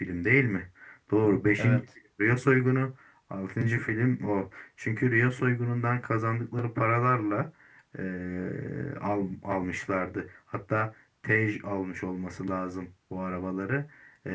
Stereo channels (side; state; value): both; identical; correlation 1.00